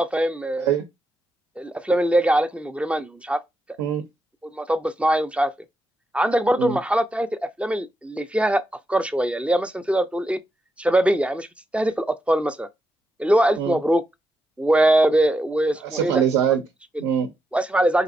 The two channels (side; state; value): both; normal; correlation 0.84